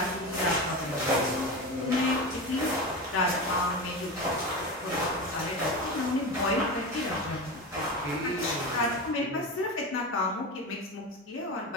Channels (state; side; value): normal; both; correlation 0.24